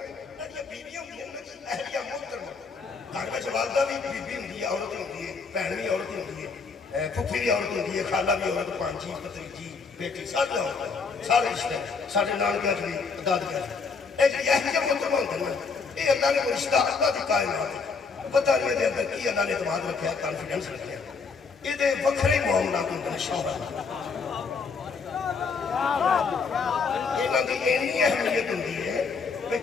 یہ بیوی ہوتی ہے اہلیہ محترمہ گھر میں والدہ بھی بیوی ہوتی ہے عورت ہوتی ہے بہن بھی عورت ہوتی ہے پھپھی بھی عورت ہوتی ہے خالہ بھی عورت پانچی پتریجی بیٹی سارے ہوتے ہیں سارے رشتے سارے نانکے بھی دادکے یہ اہلیہ محترمہ ہوتے ہیں یہ اللہ نے وہ رشتہ اللہ کی کائنات ہے پتہ نہیں ہے اندر کی اللہ نے اعتماد رکھا ہے کانفیڈنس رکھا ہے یہ دے وکھرے معاملات ہوتے ہیں شوہر یہ دی اینی اہمیت ہوتی ہے کہ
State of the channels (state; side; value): quieter; right; 4.9 dB